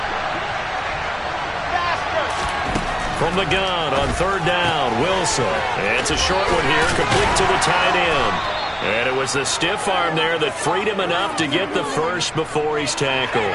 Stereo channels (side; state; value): both; identical; correlation 1.00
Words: From the gun on 3rd down, Wilson. It's a short one here, complete to the tight end. And it was the stiff arm there that freed him enough to get the first before he's tackled.